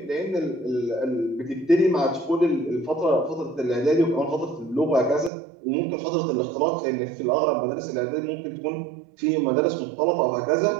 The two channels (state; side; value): drops out; left; at 5.3 s